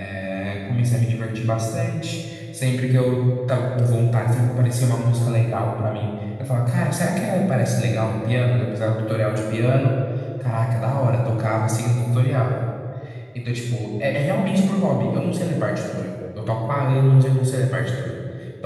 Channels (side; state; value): both; identical; correlation 1.00